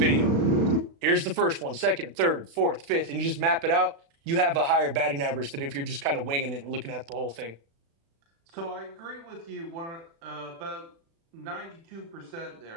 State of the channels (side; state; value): left; late; 36 ms